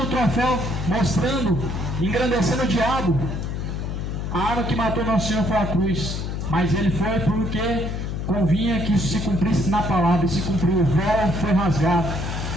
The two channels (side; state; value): left; noise; hum, 4 dB below the sound